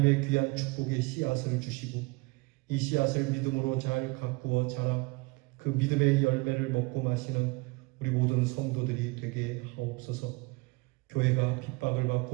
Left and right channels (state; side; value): quieter; left; 25.9 dB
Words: 귀한 축복의 씨앗을 주시고 이 씨앗을 믿음으로 잘 가꾸어 자라 그 믿음의 열매를 먹고 마시는 우리 모든 성도들이 되게 하옵소서. 교회가 핍박을